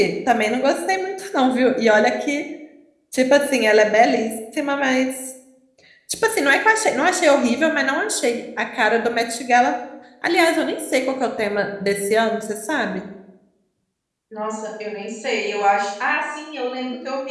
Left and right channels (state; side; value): identical; both; correlation 1.00